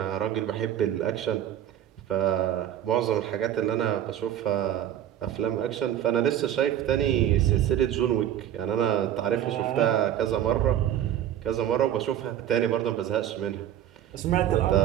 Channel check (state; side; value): quieter; left; 11.1 dB